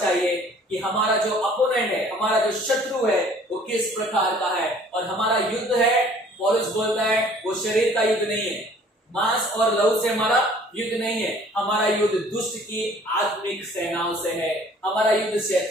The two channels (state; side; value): normal; both; correlation 0.54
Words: कि हमारा जो अपोनेंट है, हमारा जो शत्रु है, वो किस प्रकार का है। और हमारा युद्ध है, पौलुस बोलता है, वो शरीर का युद्ध नहीं है, मांस और लहू से हमारा युद्ध नहीं है। हमारा युद्ध दुष्ट की आत्मिक सेनाओं से है, हमारा युद्ध